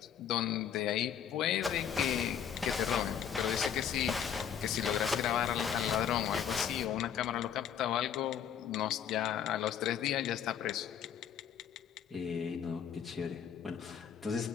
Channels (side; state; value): right; quieter; 8.6 dB